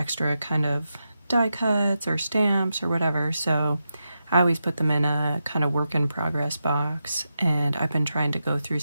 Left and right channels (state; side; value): inverted; both; correlation -0.88